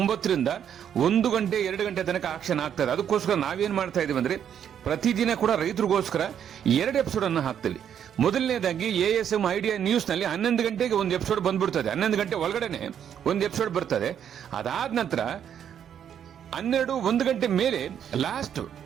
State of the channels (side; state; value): left; quieter; 9.0 dB